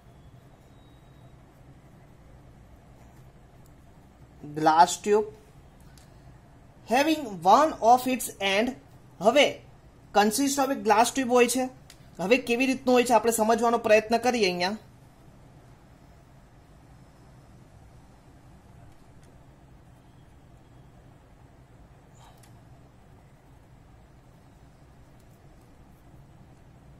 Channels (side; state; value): both; identical; correlation 1.00